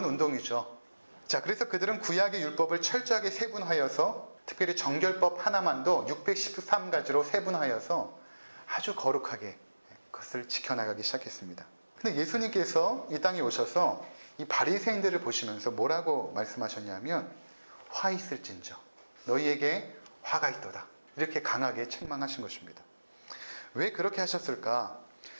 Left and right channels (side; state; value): both; inverted; correlation -1.00